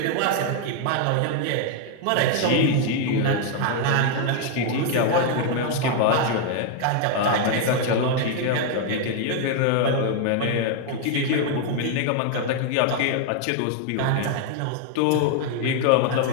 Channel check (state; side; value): different; both; correlation 0.00